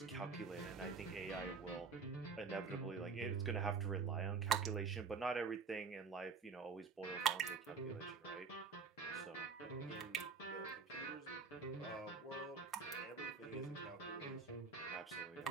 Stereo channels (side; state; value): left; quieter; 5.2 dB